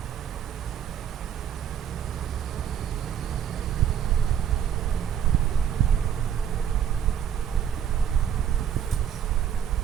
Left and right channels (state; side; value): quieter; left; 9.0 dB